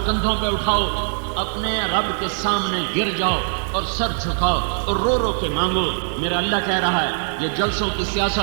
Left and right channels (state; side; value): silent; left; digital silence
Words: کندھوں پہ اٹھاؤ، اپنے رب کے سامنے گر جاؤ اور سر جھکاؤ اور رو رو کے مانگو۔ میرا اللہ کہہ رہا ہے یہ جلسوں کی